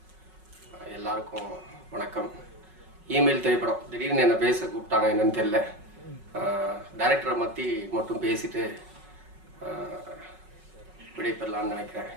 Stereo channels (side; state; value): left; late; 5.4 ms